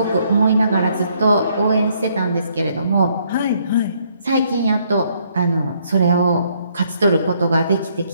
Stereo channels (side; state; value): both; inverted; correlation -0.69